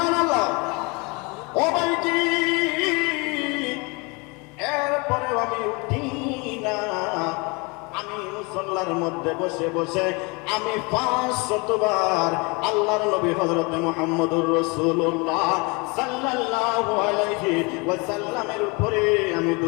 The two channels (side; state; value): right; quieter; 28.6 dB